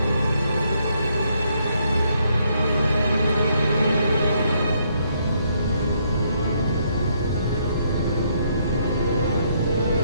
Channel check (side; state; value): both; inverted; correlation -0.72